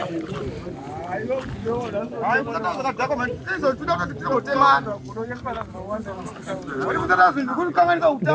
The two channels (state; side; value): identical; both; correlation 1.00